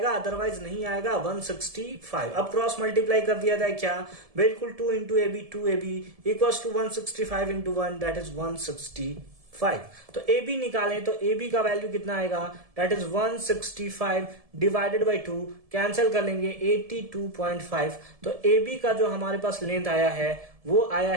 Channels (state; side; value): late; left; 1.7 ms